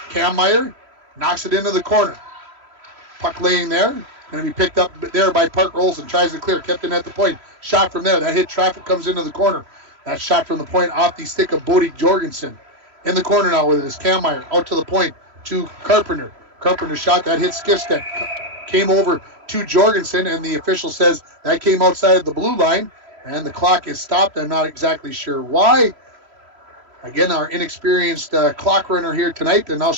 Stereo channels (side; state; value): left; late; 3.1 ms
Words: Cam Meyer knocks it into the corner. Puck laying there, going to be picked up there by Parker Olsen, tries to clear, kept in at the point. Shot from there, that hit traffic, comes into the corner. That shot from the point off the stick of Bodie Jorgensen. In the corner now with it is Cam Meyer, out to the point to Carpenter. Carpenter shot, that hit Skifstead. Came over to Jorgensen, and the official says that came outside of the blue line, and the clock is stopped. I'm not exactly sure why. Again, our inexperienced clock runner here tonight, and now